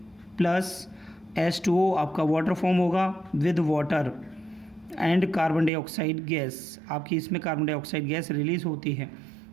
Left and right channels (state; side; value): drops out; left; at 5.7 s